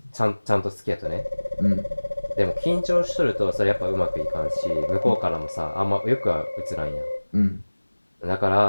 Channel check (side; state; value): both; inverted; correlation -1.00